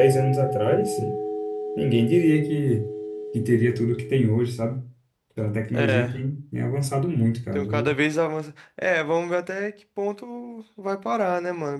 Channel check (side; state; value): both; identical; correlation 1.00